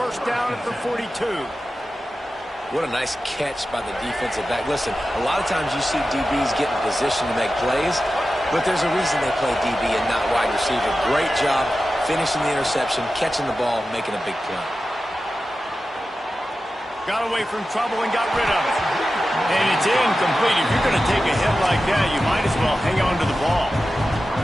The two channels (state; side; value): normal; both; correlation 0.93